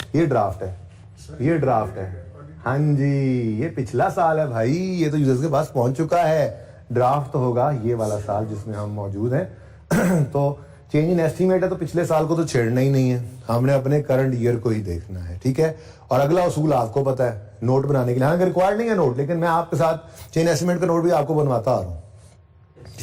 ये ड्राफ्ट है, ये ड्राफ्ट है। हाँ जी, ये पिछला साल है भाई, ये तो यूजर्स के पास पहुंच चुका है। ड्राफ्ट तो होगा ये वाला साल जिसमें हम मौजूद हैं। तो चेंज इन एस्टीमेट है तो पिछले साल को तो छेड़ना ही नहीं है, हमने अपने करंट ईयर को ही देखना है, ठीक है। और अगला उसूल आपको पता है, नोट बनाने के लिए, हालांकि रिक्वायर्ड नहीं है नोट, लेकिन मैं आपके साथ चेंज एस्टीमेट का नोट भी आपको बनवाता आ रहा हूँ,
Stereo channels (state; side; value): identical; both; correlation 1.00